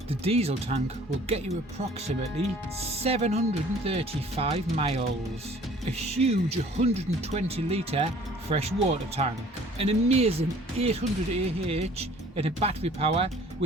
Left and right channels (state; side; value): normal; both; correlation 0.52